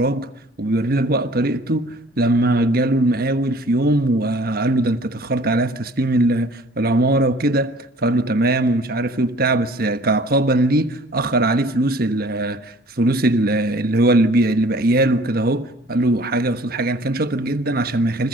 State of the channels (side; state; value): both; normal; correlation 0.51